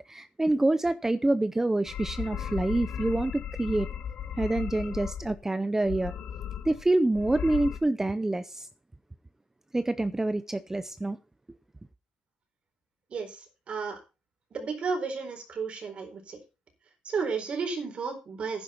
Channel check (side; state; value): both; normal; correlation 0.93